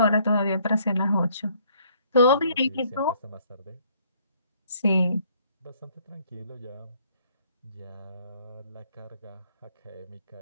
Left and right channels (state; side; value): inverted; both; correlation -0.64